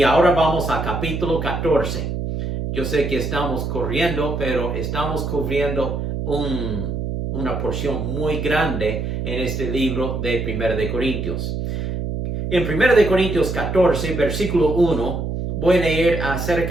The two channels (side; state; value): right; noise; hum, 3 dB below the sound